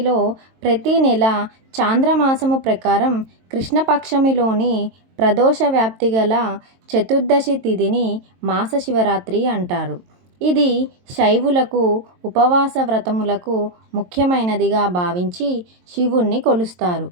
ప్రతి నెల చాంద్రమాసము ప్రకారం కృష్ణపక్షమిలోని ప్రదోష వ్యాప్తి గల చతుర్దశి తిథిని మాసశివరాత్రి అంటారు. ఇది శైవులకు ఉపవాస వ్రతములకు ముఖ్యమైనదిగా భావించి శివుణ్ణి కొలుస్తారు.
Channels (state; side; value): late; left; 22 ms